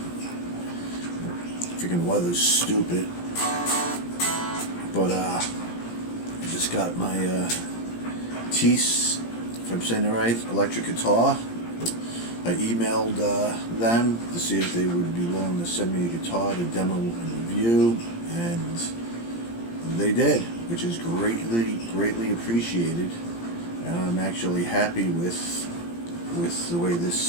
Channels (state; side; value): late; right; 17 ms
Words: Freaking weather's stupid. But I just got my tease, if I'm saying it right, electric guitar. I emailed them to see if they would be willing to send me a guitar to demo and review, and they did, which is greatly appreciated, and I'm actually happy with the way